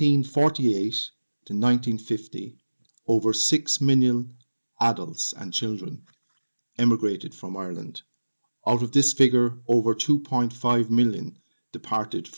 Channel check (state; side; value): inverted; both; correlation -1.00